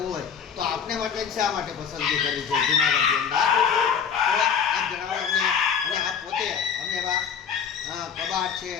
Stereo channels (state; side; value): quieter; right; 7.2 dB